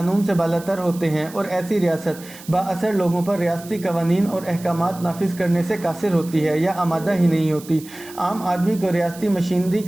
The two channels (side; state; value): right; noise; hiss, 18 dB below the sound